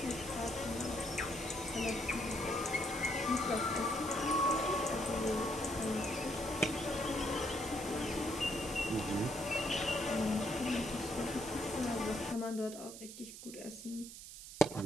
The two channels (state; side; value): noise; right; hiss, 12 dB below the sound